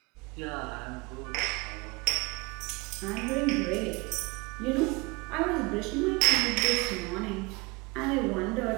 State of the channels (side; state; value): left; quieter; 26.2 dB